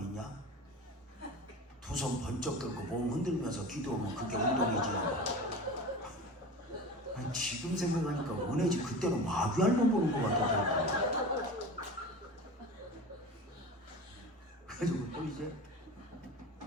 두 손 번쩍 들고 몸 흔들면서 기도하면 그게 운동이지. 아니, 지금 생각하니까 은혜지 그때는 마귀알만 보는 것 같더라고. 그래가지고 또 이제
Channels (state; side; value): normal; both; correlation 0.33